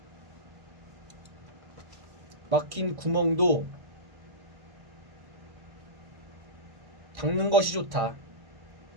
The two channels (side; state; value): left; late; 1.6 ms